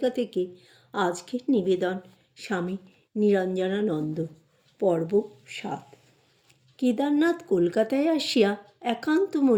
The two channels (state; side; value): identical; both; correlation 1.00